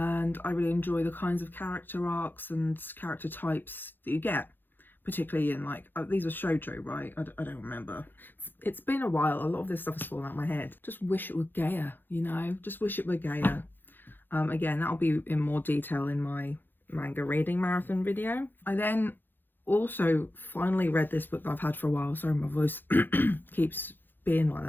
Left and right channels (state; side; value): late; right; 0.094 ms